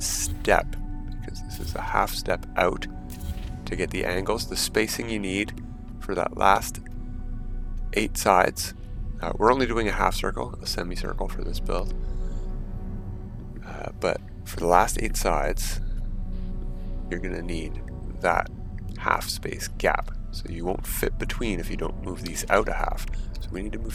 because this is a half step out to get the angles, the spacing you need for that last 8 sides. We're only doing a half circle, a semicircle for this build. But for the last 8 sides, you're going to need that half space gap. So you won't fit between if you don't move these out a half. So we need to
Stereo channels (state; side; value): identical; both; correlation 1.00